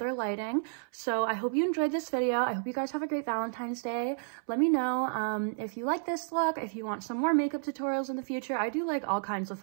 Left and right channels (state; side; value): silent; left; 57 dB below the other